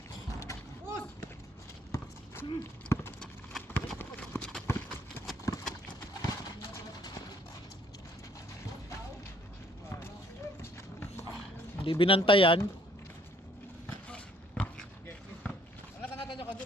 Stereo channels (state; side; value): normal; both; correlation 0.63